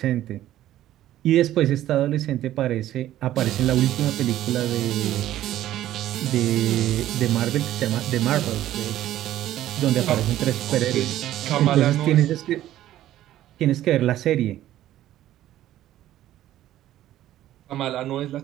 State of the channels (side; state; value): left; quieter; 13.3 dB